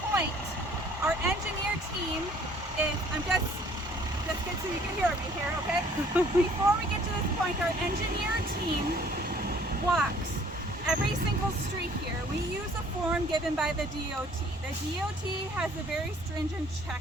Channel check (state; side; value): normal; both; correlation 0.57